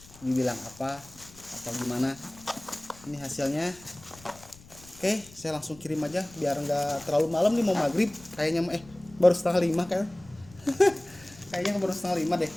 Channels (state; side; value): noise; left; rumble, 22 dB below the sound